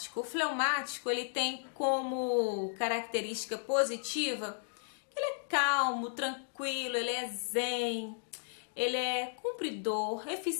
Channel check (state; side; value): silent; right; digital silence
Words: O fleumático, ele tem como característica positiva que ele é calmo, tranquilo, ele é zen, ele é cumpridor,